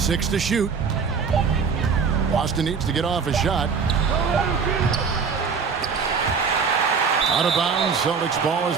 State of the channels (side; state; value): left; quieter; 5.7 dB